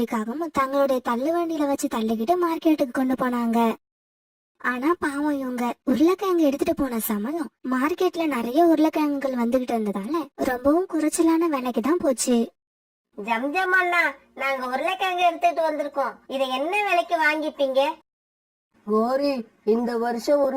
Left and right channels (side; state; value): both; identical; correlation 1.00